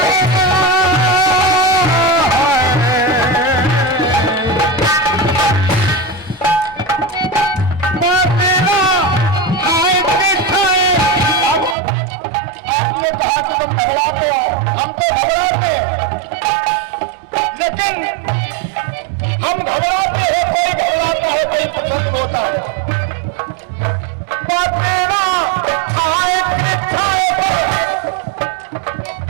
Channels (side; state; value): left; drops out; at 11.8 s